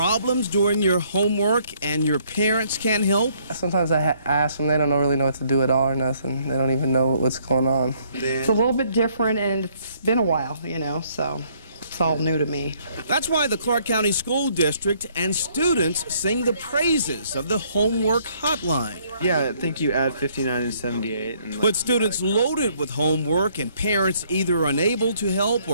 doing your homework and your parents can't help? Sometimes I ask them, they don't really know what to do at all or nothing. They don't even know what's going on. It's a little bit different, and it's been a while, you know, so it's all new to me. That's why the Clark County School District and students sing the praises of the homework hotline. Yeah, I think you add 59 and 78. And But students loaded with homework and parents either unable to help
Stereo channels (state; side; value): inverted; both; correlation -0.65